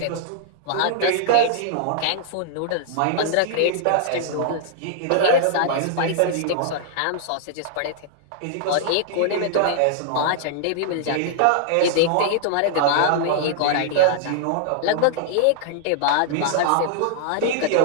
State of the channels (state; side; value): different; both; correlation -0.01